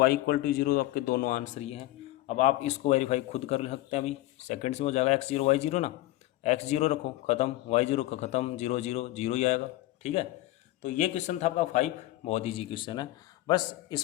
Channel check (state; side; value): quieter; right; 16.9 dB